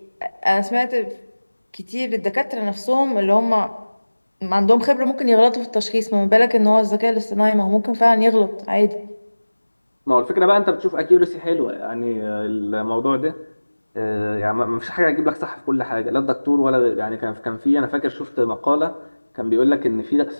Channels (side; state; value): both; inverted; correlation -1.00